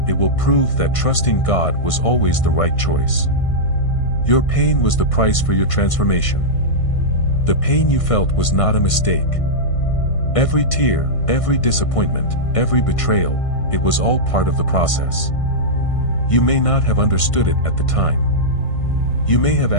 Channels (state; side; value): late; right; 1.6 ms